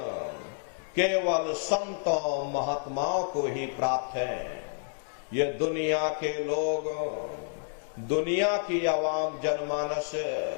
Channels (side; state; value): right; silent; digital silence